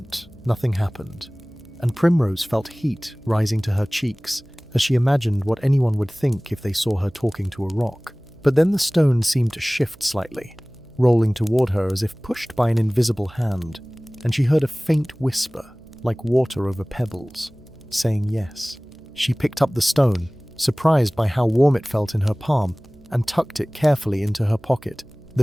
nothing happened, and Primrose felt heat rising to her cheeks as she imagined what anyone would think if they saw her talking to a rock. But then the stone seemed to shift slightly, rolling toward her as if pushed by an invisible hand, and she heard a faint whisper, like water over pebbles, saying yes. She picked up the stone, surprised by how warm it felt in her palm, and tucked it carefully into her pocket.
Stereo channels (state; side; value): noise; right; hum, 26 dB below the sound